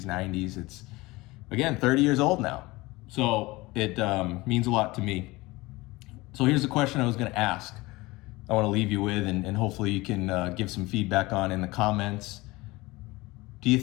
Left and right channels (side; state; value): right; quieter; 21.3 dB